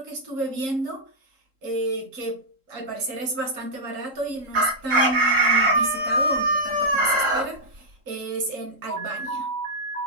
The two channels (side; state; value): left; late; 3.7 ms